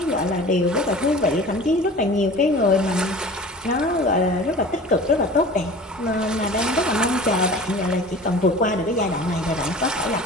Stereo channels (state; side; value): normal; both; correlation 0.40